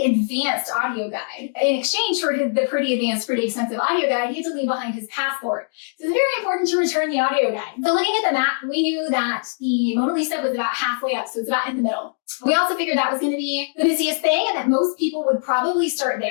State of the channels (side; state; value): right; silent; digital silence